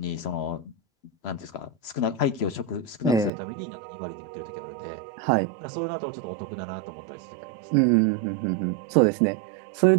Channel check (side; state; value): left; drops out; at 3.3 s